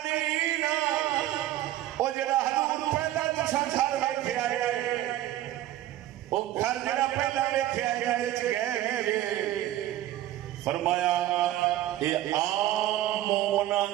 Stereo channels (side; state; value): left; quieter; 13.9 dB